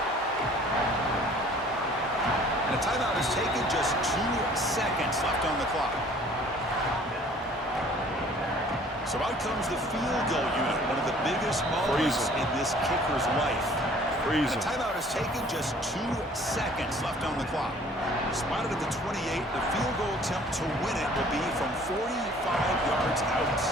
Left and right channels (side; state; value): both; normal; correlation 0.53